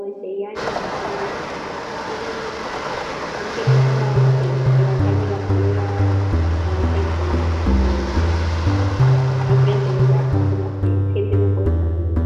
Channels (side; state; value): both; identical; correlation 1.00